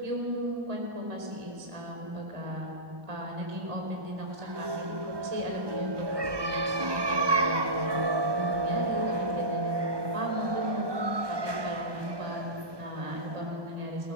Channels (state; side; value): late; left; 1.2 ms